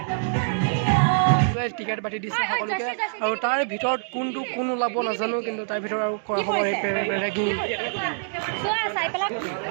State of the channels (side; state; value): left; silent; digital silence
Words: টিকেট বাটি দিছে সকলোকে আৰু তাৰ ভিতৰত কোন ওলাব নাজানো কিন্তু তাৰ ভিতৰত আৰু কৰা হ'ব ৰেগিং